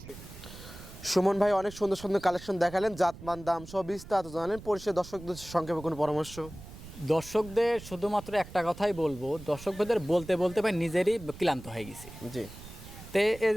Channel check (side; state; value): right; noise; rumble, 15 dB below the sound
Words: সুমন ভাই অনেক সুন্দর সুন্দর কালেকশন দেখালেন, জাতমান, দাম সব বিস্তারিত জানালেন। পরিশেষে দর্শকদের সংক্ষেপে কোনো পরামর্শ? দর্শকদের শুধুমাত্র একটা কথাই বলবো, দর্শকদের বলতে বলতে ভাই নিজেরই ক্লান্ত হয়ে গেছি। জি। তে এই